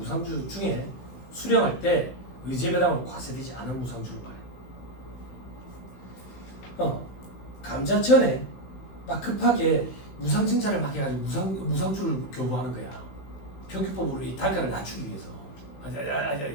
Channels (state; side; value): late; right; 16 ms